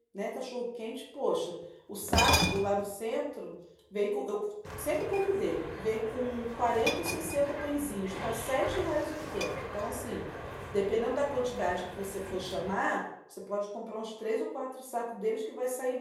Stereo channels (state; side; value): identical; both; correlation 1.00